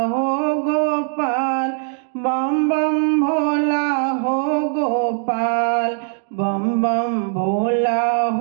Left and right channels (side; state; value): left; silent; 56 dB below the other